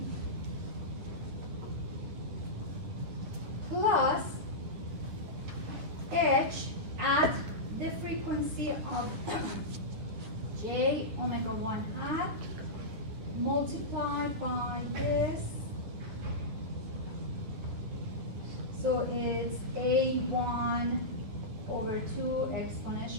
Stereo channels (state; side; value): late; left; 10 ms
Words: omega 1 hat multiplied by this. So it's A1 over 2